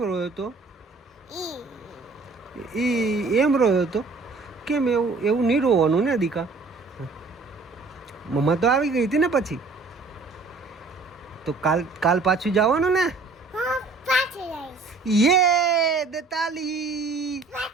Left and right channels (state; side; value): quieter; left; 3.9 dB